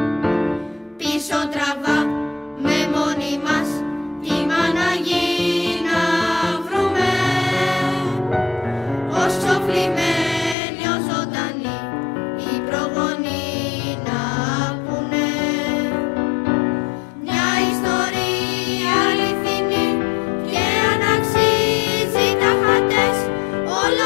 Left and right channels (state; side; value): drops out; right; at 10.6 s